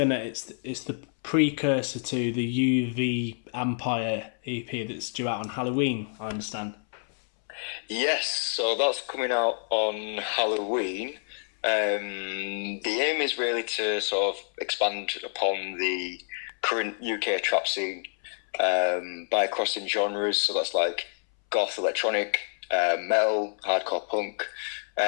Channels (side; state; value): right; silent; 59 dB below the other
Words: precursor to the UV Empire EP that's due out on Halloween, I understand. Yes, so that's coming out on Halloween. The aim is really to sort of expand upon the current UK trap scene by crossing genres. So that's like goth electronic, metal, hardcore punk,